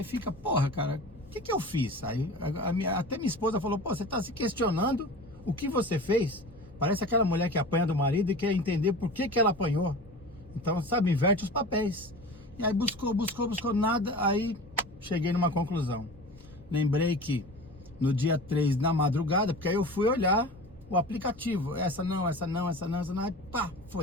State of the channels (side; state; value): left; noise; rumble, 24 dB below the sound